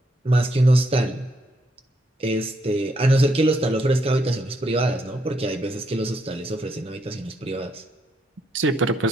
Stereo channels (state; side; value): normal; both; correlation 0.76